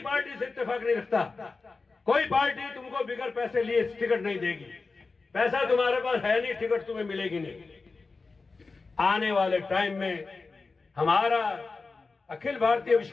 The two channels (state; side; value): quieter; right; 4.1 dB